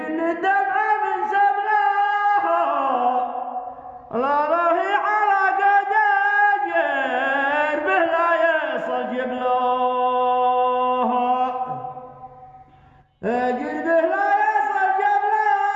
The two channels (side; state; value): both; identical; correlation 1.00